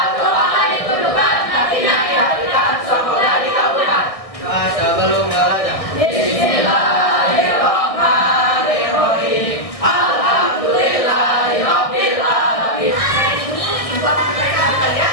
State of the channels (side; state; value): right; late; 1.6 ms